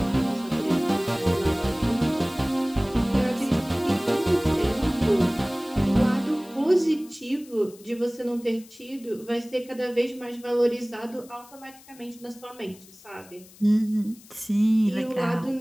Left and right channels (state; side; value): noise; left; hiss, 23 dB below the sound